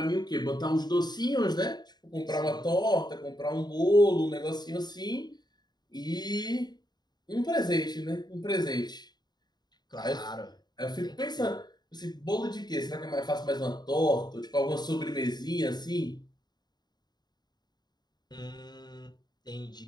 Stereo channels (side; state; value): right; late; 0.20 ms